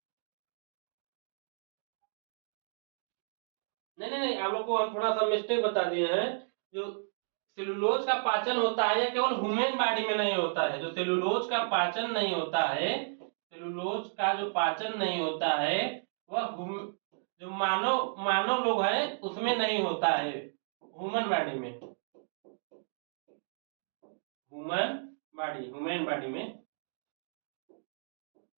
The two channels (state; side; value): silent; left; digital silence